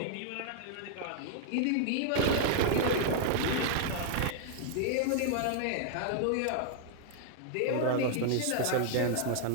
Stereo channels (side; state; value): both; different; correlation -0.01